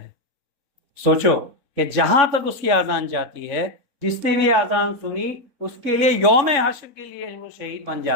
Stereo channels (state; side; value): late; left; 3.6 ms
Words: سوچو کہ جہاں تک اس کی اذان جاتی ہے، جس نے بھی اذان سنی اس کے لیے یوم حشر کے لیے وہ شہید بن